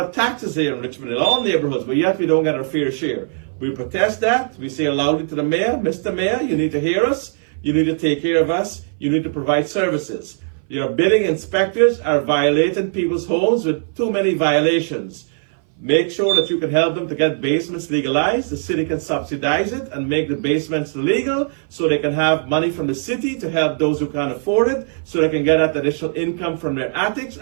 taxes here in Richmond, in all neighborhoods, but yet we don't get our fair share. We protest that. We say loudly to the mayor, Mr. Mayor, you need to hear us. You need to take care of us. You need to provide services. Your bidding inspectors are violating people's homes with too many violations. Make sure that you can help them to get basements legalized. The city can subsidize it and make the basements legal so they can have money from the city to help those who can't afford it, so they can get that additional income from their attics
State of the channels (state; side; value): silent; left; 60 dB below the other